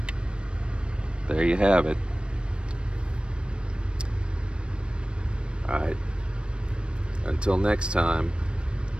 there you have it. Alright, until next time,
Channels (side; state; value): left; late; 0.056 ms